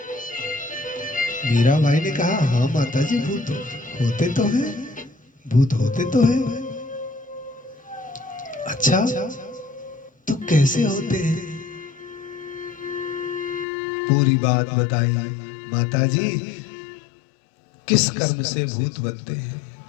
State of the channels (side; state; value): right; drops out; at 13.7 s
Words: मीराबाई ने कहा, हाँ माता जी, भूत होते तो हैं, भूत होते तो हैं। अच्छा, तो कैसे होते हैं? पूरी बात बताई। माता जी, किस कर्म से भूत बनते हैं?